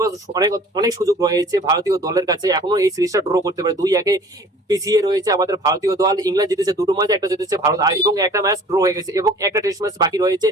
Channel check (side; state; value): both; normal; correlation 0.48